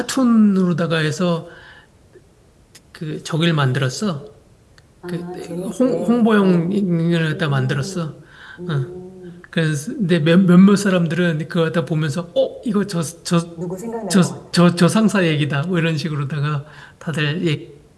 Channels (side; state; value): both; identical; correlation 1.00